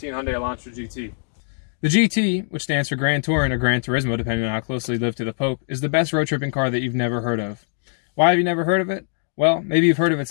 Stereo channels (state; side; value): silent; right; digital silence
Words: Hyundai Elantra GT. The GT, which stands for Grand Touring or Gran Turismo, depending on how closely you live to the Pope, is the best road tripping car that you've never heard of. Why have you never heard of it? Well, maybe you've heard of